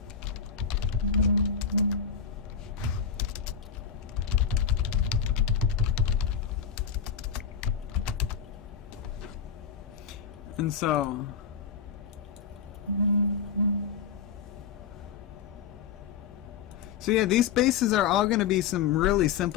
And so... So yeah, these bases are all going to be some really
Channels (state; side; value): quieter; right; 7.0 dB